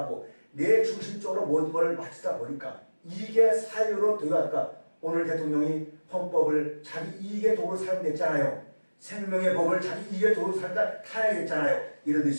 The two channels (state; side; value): inverted; both; correlation -1.00